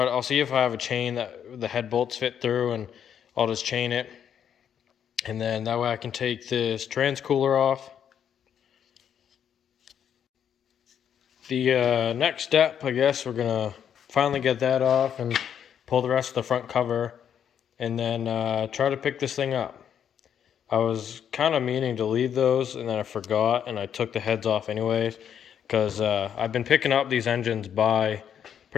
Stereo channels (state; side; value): quieter; right; 8.7 dB